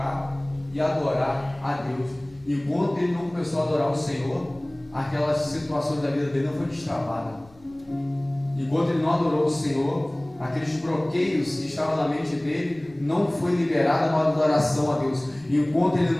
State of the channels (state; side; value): noise; left; rumble, 27 dB below the sound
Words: e adorar a Deus. Enquanto ele não começou a adorar o Senhor, aquelas situações da vida dele não foi destravada. Enquanto ele não adorou o Senhor, aqueles bloqueios que estavam na mente dele não foi liberada uma adoração a Deus. Enquanto ele